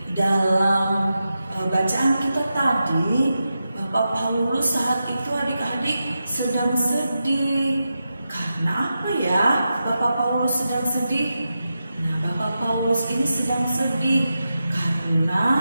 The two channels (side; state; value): both; inverted; correlation -0.89